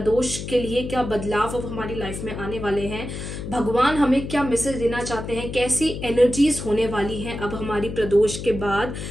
के लिए क्या बदलाव अब हमारी लाइफ में आने वाले हैं, भगवान हमें क्या मैसेज देना चाहते हैं, कैसी एनर्जीज होने वाली हैं अब हमारी प्रदोष के बाद।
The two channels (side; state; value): left; noise; hum, 7 dB below the sound